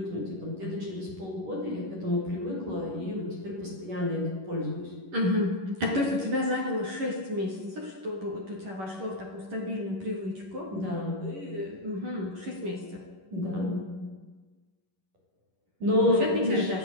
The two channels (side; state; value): left; late; 11 ms